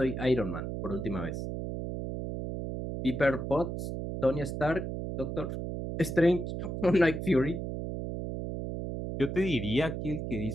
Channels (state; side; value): noise; right; hum, 4 dB below the sound